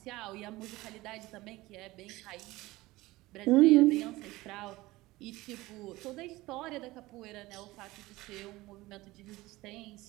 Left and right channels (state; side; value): quieter; left; 19.2 dB